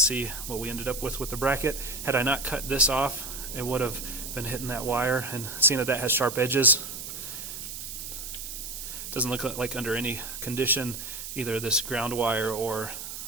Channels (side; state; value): right; noise; hiss, 8 dB below the sound